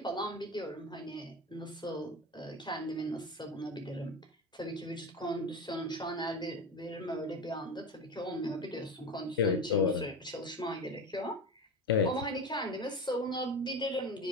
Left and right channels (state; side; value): normal; both; correlation 0.25